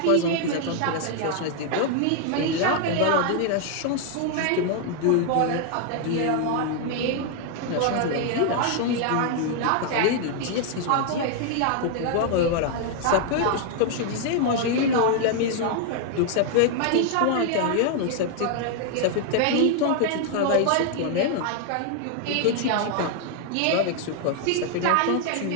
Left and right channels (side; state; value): both; different; correlation 0.00